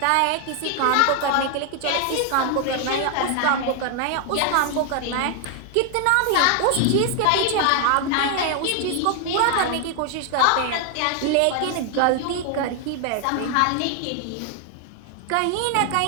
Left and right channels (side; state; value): both; different; correlation 0.00